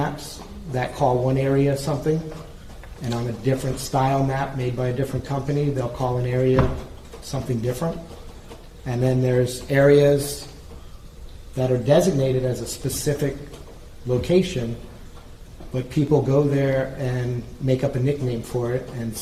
that call one area something, and on a different style map made by a different company, they'll call an area something different. And then there's areas that are designated as a specific location, but people go there and make up a nickname for it, and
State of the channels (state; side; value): identical; both; correlation 1.00